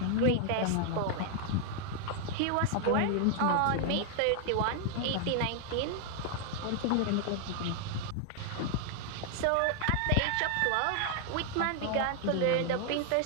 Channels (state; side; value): different; both; correlation 0.00